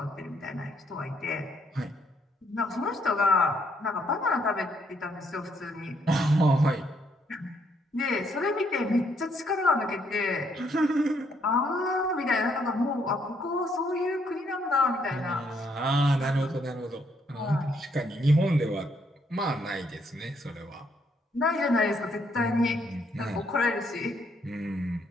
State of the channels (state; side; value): normal; both; correlation 0.71